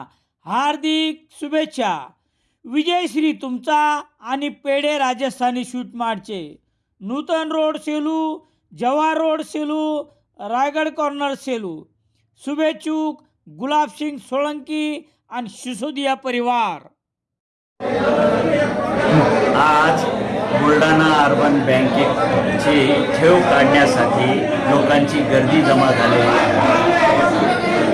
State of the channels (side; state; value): both; identical; correlation 1.00